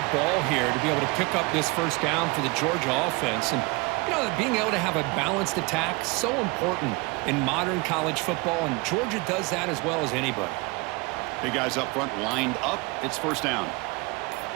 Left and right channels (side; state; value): left; quieter; 26.5 dB